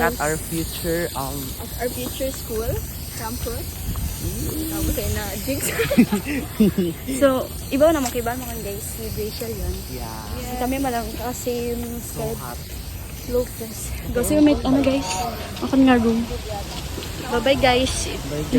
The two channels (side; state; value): both; identical; correlation 1.00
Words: at guys? our future At our future school campus. Tapos ay na jinx. So, iba naman kay mga guys, si Rachel yun. yeah. Kami malang kasi So hot. slow press. Kasi may ano guys, ako nga room. Bye-bye guys. guys.